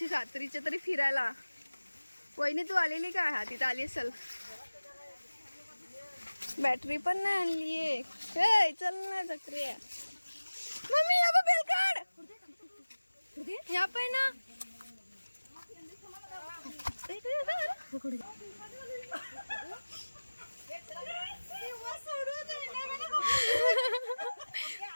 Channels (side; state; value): both; inverted; correlation -1.00